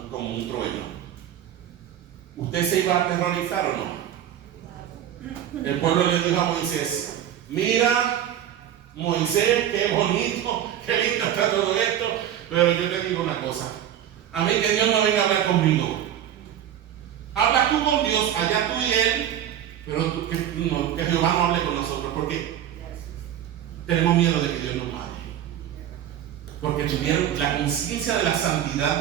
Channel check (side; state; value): left; quieter; 10.6 dB